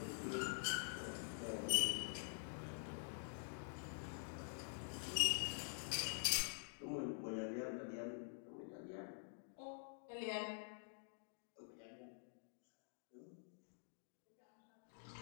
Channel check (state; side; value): silent; right; digital silence